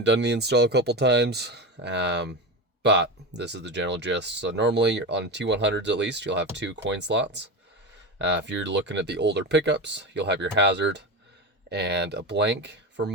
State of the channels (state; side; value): normal; both; correlation 0.21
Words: the install a couple times. But this is the general gist. So normally on T100s at least, you'll have 2 coin slots. If you're looking at the older pickups, you'll have your hazard and a blank for